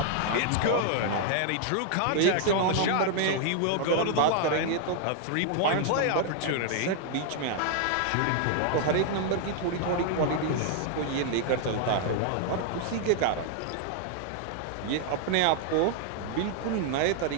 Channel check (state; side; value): different; both; correlation 0.00